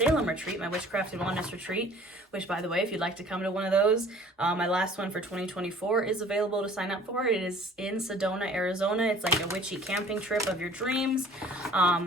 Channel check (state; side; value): normal; both; correlation 0.50